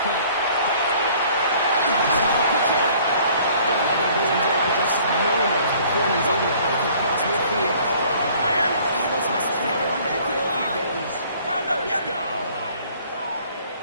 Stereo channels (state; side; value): inverted; both; correlation -0.55